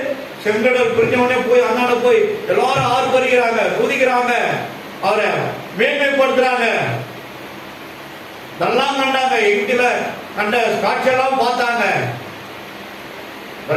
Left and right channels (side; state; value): both; identical; correlation 1.00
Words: செங்கடல் பிரிஞ்சவனே போய் அண்ணாட போய் எல்லாரும் ஆர்ப்பரிக்கிறாங்க, குதிக்கிறாங்க, அவரை மேன்மைப்படுத்துறாங்க. இதெல்லாம் கண்டாங்க. எகிப்தில கண்ட காட்சியெல்லாம் பார்த்தாங்க.